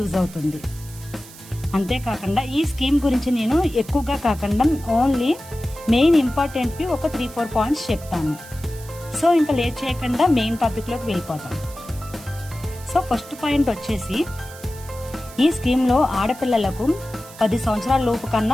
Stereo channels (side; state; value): right; noise; hiss, 18 dB below the sound